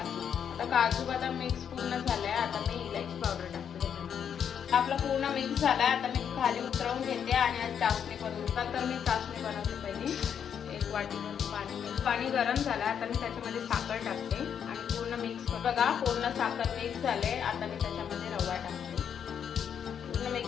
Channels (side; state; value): right; quieter; 8.1 dB